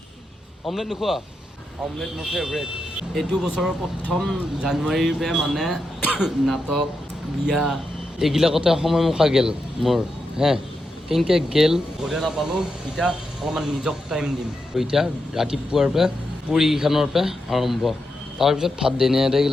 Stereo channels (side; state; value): both; normal; correlation 0.86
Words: অমলেট নোখোৱা অমলেট মোৰ ফেভৰেট এইটো বছৰৰ প্ৰথম জানুৱাৰীৰ পৰা মানে নাটক বিয়া এইবিলাকতে সময় মুখা গেল মোৰ হে কেনেকৈ গেল ঘৰে নাপালোঁ এতিয়া অলপমান নিজক টাইম দিম এতিয়া ৰাতিপুৱাৰ পৰা পুৰীকেইখনৰ পৰা আৰম্ভ তাৰপিছত ভাত দেনে